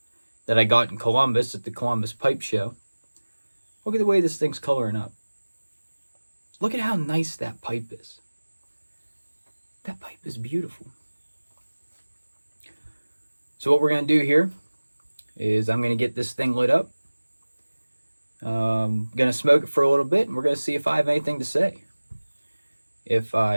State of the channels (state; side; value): inverted; both; correlation -1.00